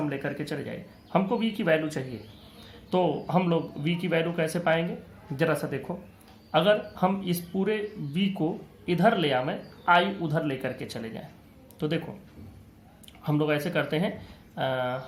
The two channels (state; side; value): identical; both; correlation 1.00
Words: लेकर के चले जाए। हमको V की वैल्यू चाहिए, तो हम लोग V की वैल्यू कैसे पाएंगे, जरा सा देखो। अगर हम इस पूरे V को इधर ले आवें, I उधर लेकर के चले जाएं, तो देखो हम लोग ऐसे करते हैं,